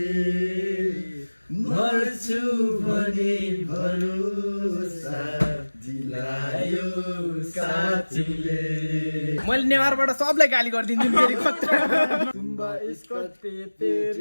मर्छु भने भरोसा दिलायो साथीले। मैले नेवारबाट सबलाई गाली गरिदिन्छु फेरि तुम्बा इसको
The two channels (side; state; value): both; inverted; correlation -1.00